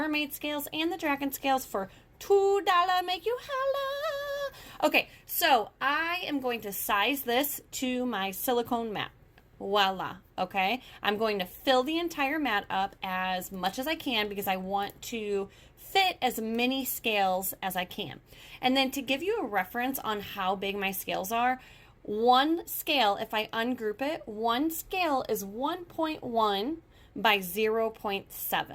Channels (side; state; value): both; identical; correlation 1.00